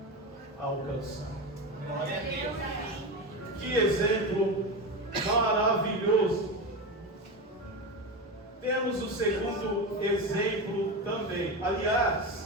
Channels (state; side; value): normal; both; correlation 0.19